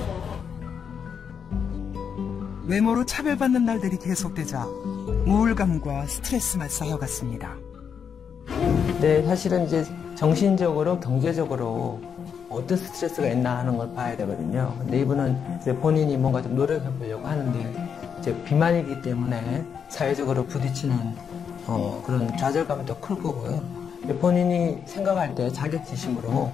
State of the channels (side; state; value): right; quieter; 7.0 dB